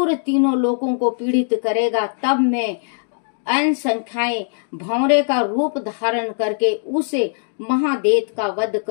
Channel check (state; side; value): silent; right; digital silence